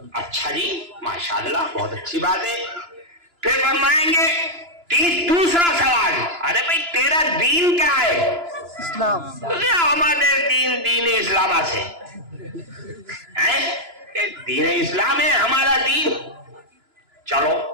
اچھا جی ماشاءاللہ بہت اچھی بات ہے. پھر فرمائیں گے دوسرا سوال، ارے بھائی تیرا دین کیا ہے؟ اسلام. ہمارے دین اسلام سے ہے، دین اسلام ہے ہمارا دین. چلو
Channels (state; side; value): late; left; 2.9 ms